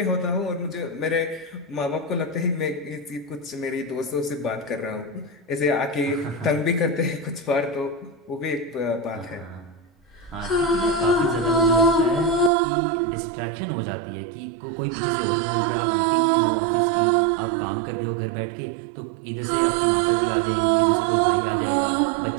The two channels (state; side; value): drops out; left; at 12.5 s